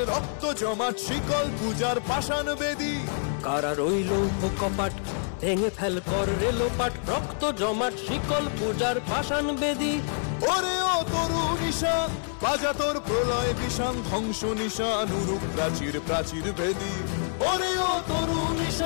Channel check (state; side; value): silent; right; 60 dB below the other